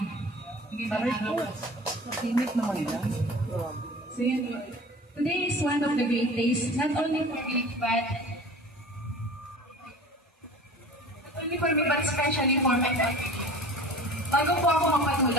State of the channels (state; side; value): normal; both; correlation 0.41